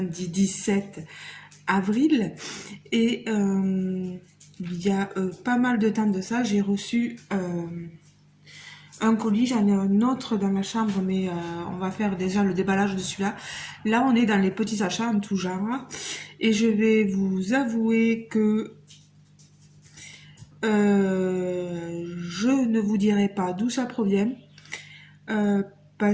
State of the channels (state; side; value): identical; both; correlation 1.00